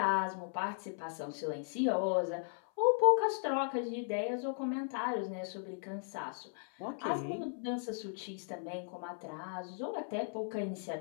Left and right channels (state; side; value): silent; right; 53 dB below the other